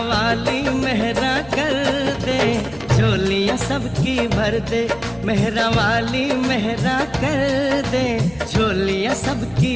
वाली मेहरा कर दे, झोलियां सबकी भर दे, मेहरा वाली मेहरा कर दे, झोलियां सबकी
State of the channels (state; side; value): noise; left; hum, 22 dB below the sound